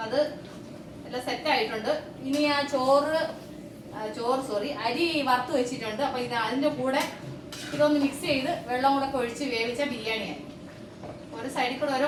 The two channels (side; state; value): both; identical; correlation 1.00